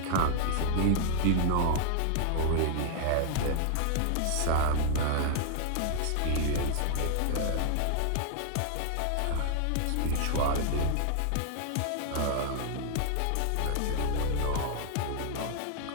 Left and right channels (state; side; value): different; both; correlation 0.00